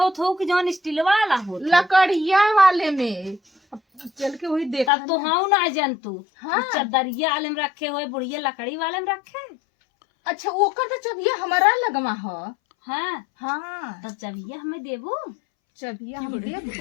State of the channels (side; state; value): right; drops out; at 4.9 s